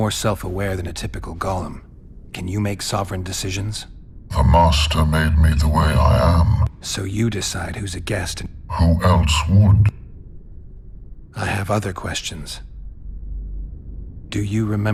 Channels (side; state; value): both; identical; correlation 1.00